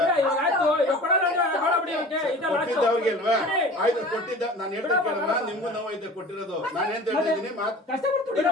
ಕೊಟ್ಟಿದ್ದ ಅವ್ರಿಗೆ ಅಲ್ವಾ ಆಯ್ತು ಕೊಟ್ಟಿದ್ದ ನಾನು ಹೇಳ್ತಾ ಕೇಳಮ್ಮ ನಿಮ್ಗೂ ನೋವು ಐತೆ ಕೊಟ್ಟಿರೋದು ನಾನು ಏನ್ ಹೇಳ್ತಾ ಇದ್ದೀನಿ ಕಷ್ಟಪಟ್ಟು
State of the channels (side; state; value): both; normal; correlation 0.41